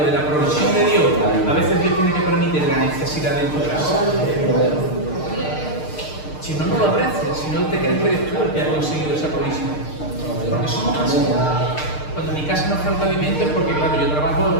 de la provisión de Dios, a veces Dios tiene que permitir la necesidad de tu casa. Si no, no lo aprecias, si no te crees que eres tú el que ha conseguido esa provisión. Porque somos así. Cuando en mi casa no falta alimento es porque, claro, yo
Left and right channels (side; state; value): right; late; 6.6 ms